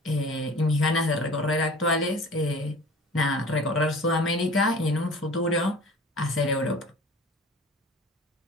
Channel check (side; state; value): both; normal; correlation 0.43